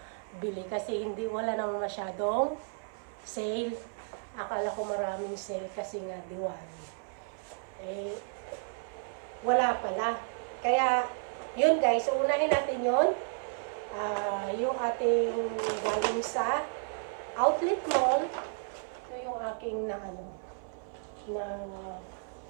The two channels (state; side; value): silent; left; 56 dB below the other